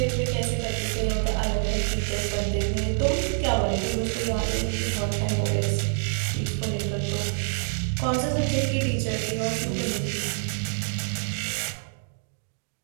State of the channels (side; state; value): left; silent; digital silence